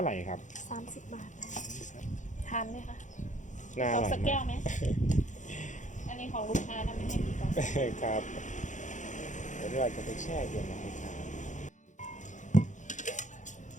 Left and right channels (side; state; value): right; late; 0.36 ms